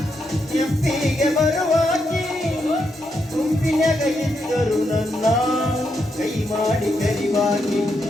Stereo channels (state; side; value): normal; both; correlation 0.81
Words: ಕೆಂಪಿಗೆ ಬರುವಾಗಿ ಗುಂಪಿನಾಗ ಇದ್ದರು ನನ್ನ ಕೈ ಮಾಡಿ ಕರಿವಾಗಿ